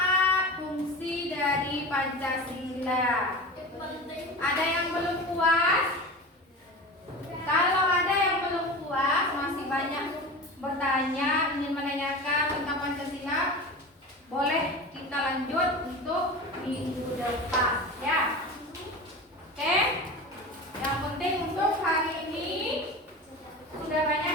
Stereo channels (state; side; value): normal; both; correlation 0.31